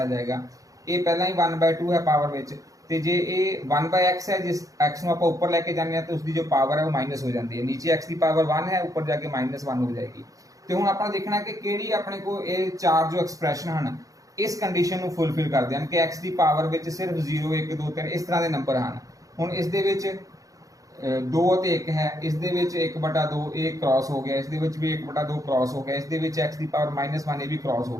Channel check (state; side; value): late; left; 0.17 ms